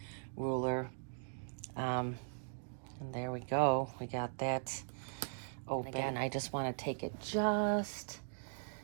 ruler. And there we go. We got that open. Again, I just want to take it, just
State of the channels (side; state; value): left; silent; digital silence